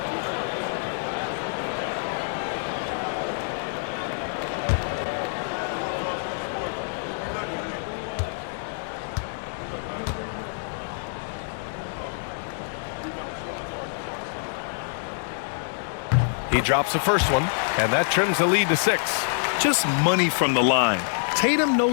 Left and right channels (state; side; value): silent; right; digital silence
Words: He drops the first one, and that trims the lead to 6. Just money from the line. Tatum